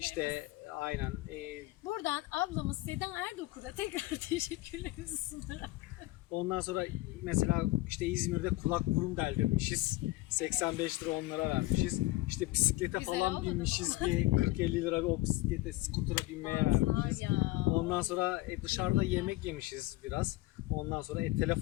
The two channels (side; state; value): right; quieter; 18.9 dB